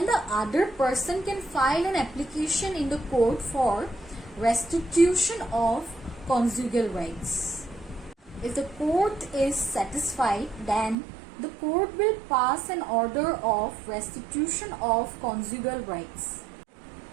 the other person can file an application in the court for restitution of conjugal rights. If the court is satisfied, then the court will pass an order of restitution of conjugal rights.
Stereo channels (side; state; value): left; drops out; at 11.0 s